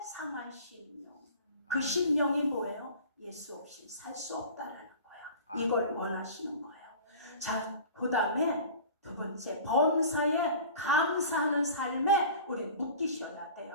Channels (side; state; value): both; inverted; correlation -0.40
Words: 상한 심령. 그 심령이 뭐예요? 예수 없이 살 수 없다라는 거예요. 이걸 원하시는 거예요. 자, 그 다음에 두 번째, 범사에 감사하는 삶에 우리 묶이셔야